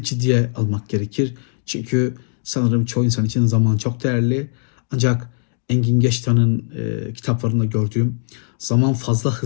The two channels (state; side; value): silent; right; digital silence